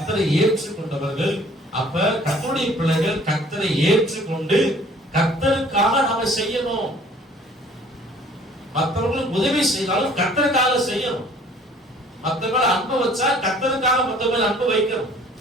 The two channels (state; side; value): normal; both; correlation 0.54